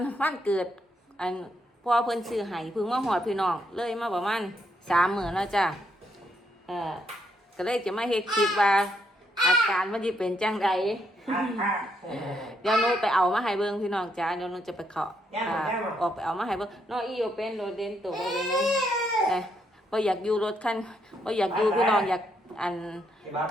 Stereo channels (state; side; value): normal; both; correlation 0.76